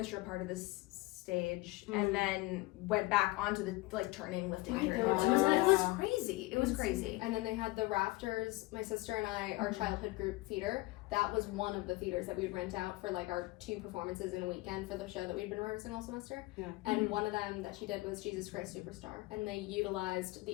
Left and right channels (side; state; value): right; quieter; 20.9 dB